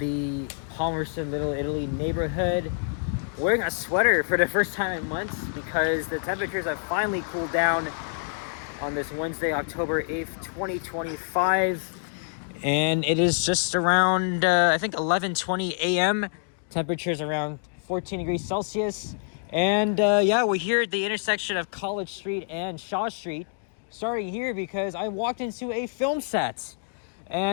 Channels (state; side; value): silent; right; digital silence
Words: Palmerston, Little Italy neighborhood, wearing a sweater for the first time in months because the temperatures have finally cooled down on this Wednesday, October 8th, 2025. And it is just around, I think, 11:20 a.m. Temperatures around 14 degrees Celsius. And yeah, we're here at the intersection of College Street and Shaw Street. Starting here because I walked into a film set,